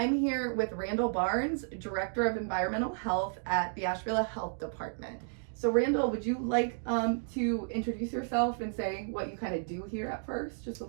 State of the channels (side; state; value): left; silent; digital silence